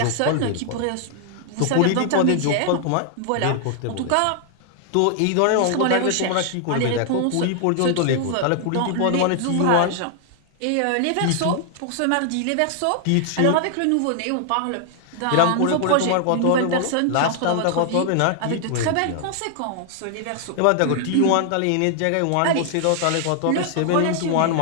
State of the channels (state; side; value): different; both; correlation 0.00